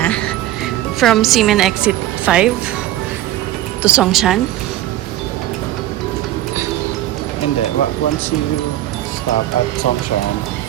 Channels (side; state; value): left; quieter; 13.9 dB